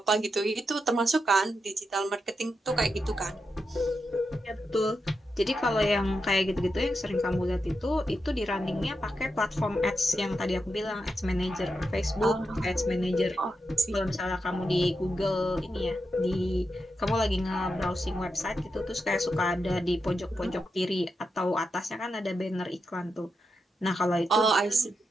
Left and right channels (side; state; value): both; normal; correlation 0.86